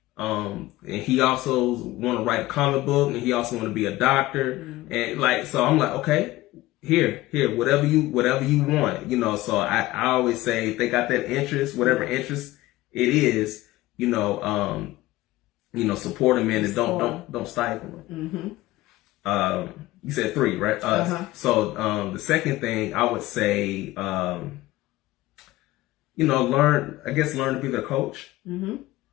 And he also want to write a comic book, and he also want to be a doctor. Mm-hmm. And so I'm like, okay, here, whatever you want, so I always say, if they got that interest, whatever interest it is, support them in, and don't stifle them. Mm-hmm. You said 3, right? So, the second thing I would say, learn to be their coach. Mm-hmm.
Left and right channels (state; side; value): quieter; right; 17.6 dB